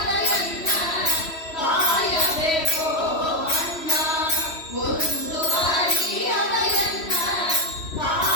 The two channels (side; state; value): right; late; 3.1 ms